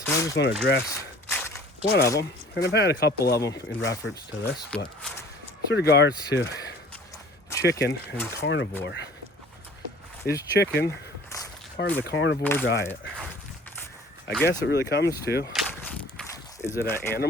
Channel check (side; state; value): both; normal; correlation 0.49